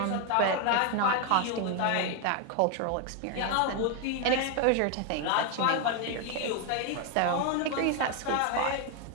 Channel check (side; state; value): both; different; correlation 0.01